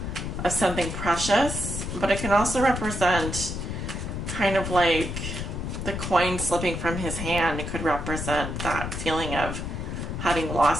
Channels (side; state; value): left; noise; rumble, 5 dB below the sound